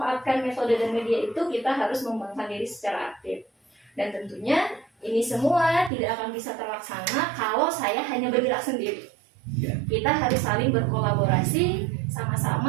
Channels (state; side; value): drops out; left; at 5.9 s